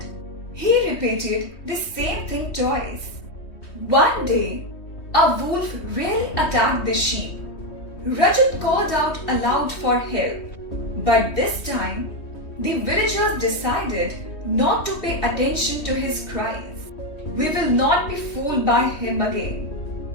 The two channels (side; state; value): right; late; 3.2 ms